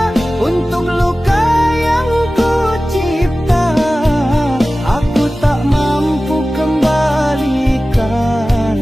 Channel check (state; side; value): normal; both; correlation 0.96